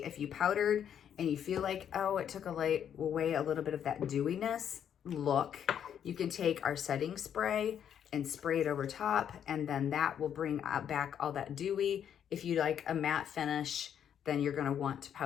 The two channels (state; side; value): quieter; right; 9.0 dB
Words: If you powdered and you feel like, oh, it took away a little bit of that dewiness look, you can take our setting spray and spray it over top, and then that will bring back all that dewy. If you like a matte finish, then you're gonna want to